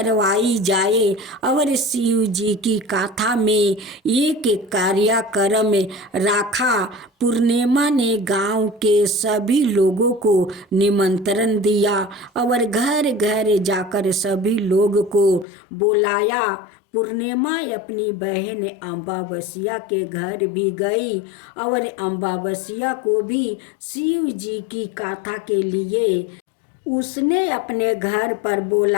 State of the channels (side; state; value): right; drops out; at 15.5 s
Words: जाए और शिव जी की कथा में एक कार्यक्रम रखा। पूर्णिमा ने गांव के सभी लोगों को निमंत्रण दिया और घर घर जाकर सभी लोगों को बुलाया। पूर्णिमा अपनी बहन अमावस्या के घर भी गई और अमावस्या को भी शिव जी की कथा के लिए उसने अपने घर पर